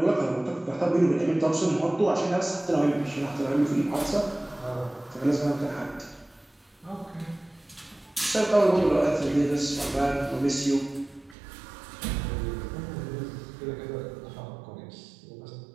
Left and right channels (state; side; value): drops out; left; at 11.4 s